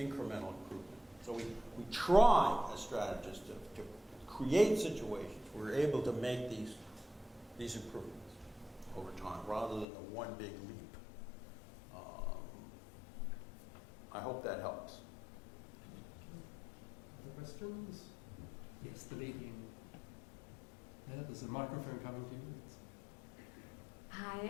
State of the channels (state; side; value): drops out; right; at 9.9 s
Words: improvement. So we try as strategists to create situations where we're able to make these improvements over time rather than the one big leap. I hope that helps. Other questions? Yes, the lady in there. There's a microphone coming to you.